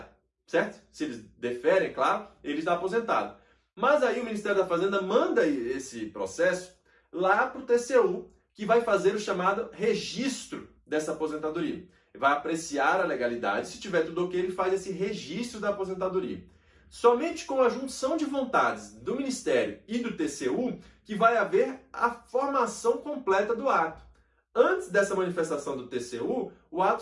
certo? Se eles deferem, claro, ele está aposentado. Mas aí o Ministério da Fazenda manda esse processo lá para o TCU, que vai fazer o chamado registro dessa aposentadoria. Vai apreciar a legalidade, se tiver tudo ok, ele faz esse registro da aposentadoria. Somente com a junção de vontades do Ministério e do TCU que vai haver a formação completa do ato. Antes dessa manifestação do TCU, o ato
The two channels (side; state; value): both; identical; correlation 1.00